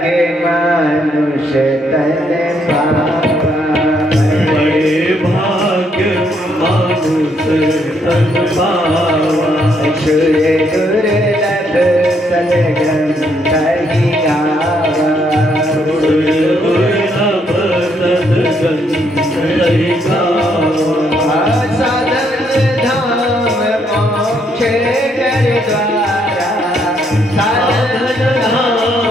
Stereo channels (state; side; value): normal; both; correlation 0.73